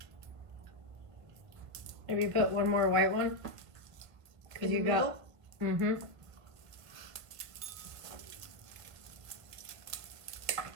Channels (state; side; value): late; left; 1.6 ms